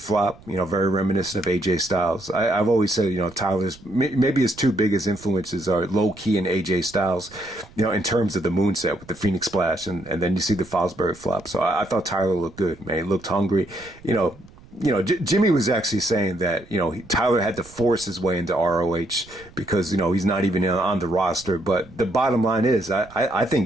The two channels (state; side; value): noise; right; rumble, 23 dB below the sound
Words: very reminiscent of AJ Styles. I've always said, Tyler's maybe his two biggest influences are Low Key and AJ Styles, in terms of the moonset with the Phoenix Splash, and then you see the Fosbury flop. So I thought Tyler looked good, man. He looked hungry. Jimmy was actually saying that, Tyler had to force his way into ROH because, he's not even on the roster. But the bottom line is, I